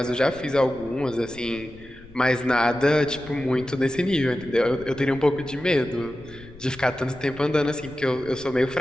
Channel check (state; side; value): noise; left; rumble, 21 dB below the sound